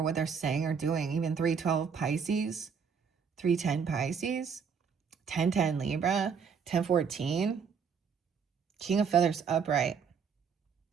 what they're saying or doing. Even 312 Pisces, 310 Pisces, 1010 Libra, 1014, King of Feathers upright.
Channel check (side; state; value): left; quieter; 6.3 dB